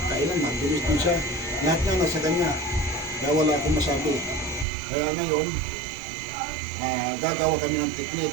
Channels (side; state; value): left; drops out; at 4.7 s